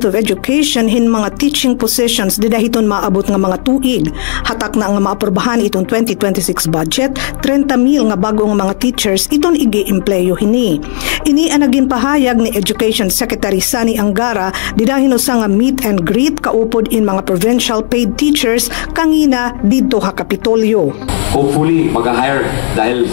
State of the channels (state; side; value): silent; right; digital silence